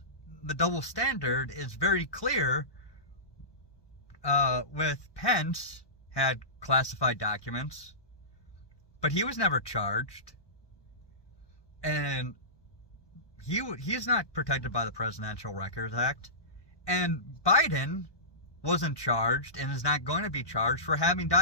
the double standard is very clear with Pence had classified documents, but he was never charged. And he's not protected by the Presidential Records Act. And Biden wasn't charged and is not going to be charged for having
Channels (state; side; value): late; right; 1.2 ms